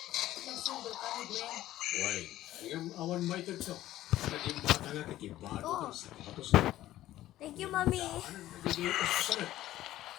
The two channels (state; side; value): quieter; right; 14.5 dB